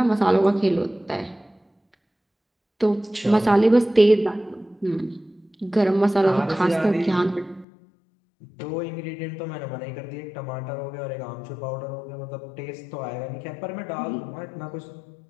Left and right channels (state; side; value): drops out; right; at 7.7 s